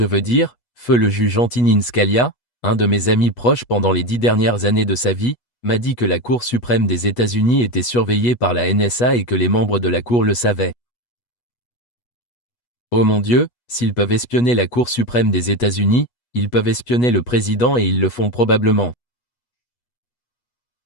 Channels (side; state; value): right; late; 8.2 ms